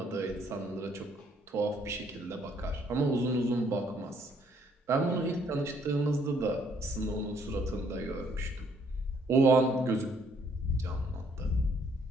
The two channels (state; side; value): normal; both; correlation 0.66